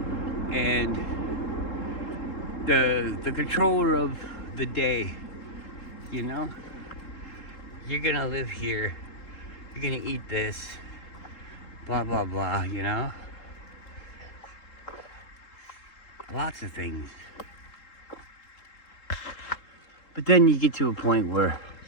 and the controller of the day, you know? You're gonna live here, you're gonna eat this, blah, blah, blah, you know? Lots of things. But then you get to a point where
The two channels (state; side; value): late; right; 3.7 ms